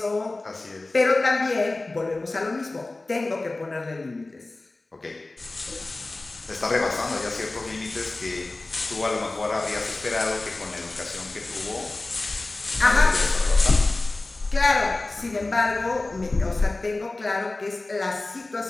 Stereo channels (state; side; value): quieter; right; 3.1 dB